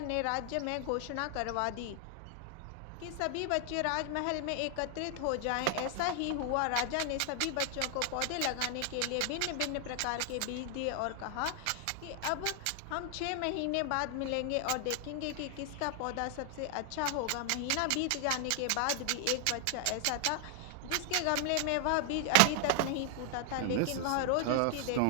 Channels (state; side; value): different; both; correlation 0.00